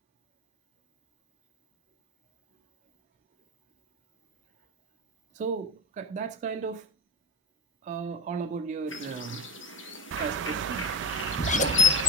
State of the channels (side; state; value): both; normal; correlation 0.14